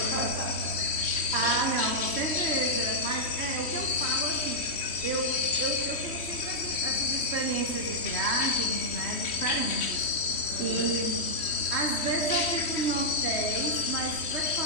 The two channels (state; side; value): late; right; 3.1 ms